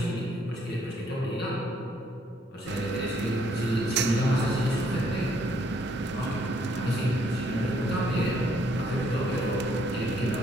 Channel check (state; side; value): normal; both; correlation 0.68